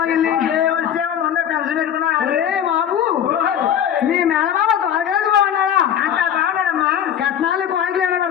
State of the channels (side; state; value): right; quieter; 9.4 dB